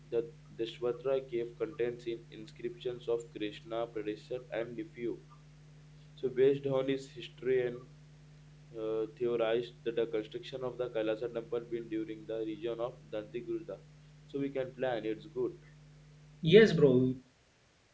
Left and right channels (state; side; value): identical; both; correlation 1.00